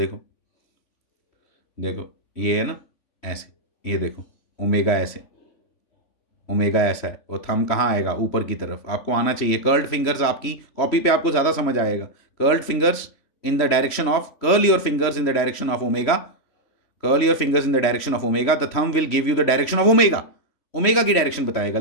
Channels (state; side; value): late; right; 3.1 ms